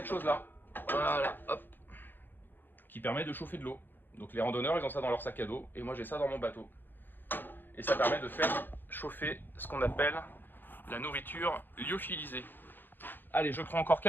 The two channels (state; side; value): late; right; 0.094 ms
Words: chose-là, voilà, hop, qui permet de chauffer de l'eau. Donc les randonneurs, ils ont ça dans leur sac à dos, et moi j'ai ça dans mon bateau. Et ça permet de faire chauffer ce qu'on appelle la nourriture lyophilisée. Allez, je prends encore